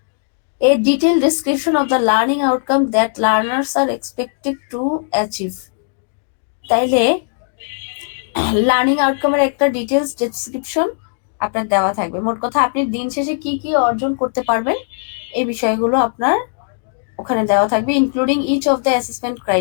A detailed description of the learning outcome that learners are expected to achieve. তাইলে লার্নিং আউটকামের একটা ডিটেলস ডেসক্রিপশন আপনার দেওয়া থাকবে। মোট কথা আপনি দিন শেষে কি কি অর্জন করতে পারবেন এই বিষয়গুলো আপনার ওখানে দেওয়া থাকবে, including each of the assessment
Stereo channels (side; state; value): right; silent; digital silence